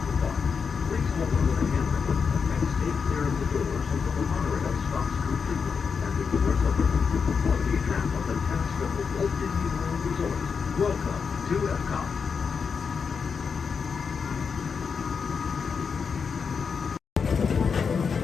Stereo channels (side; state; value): right; quieter; 5.9 dB